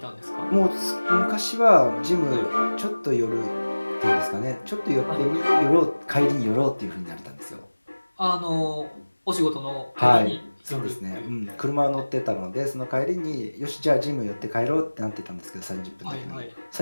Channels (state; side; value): inverted; both; correlation -1.00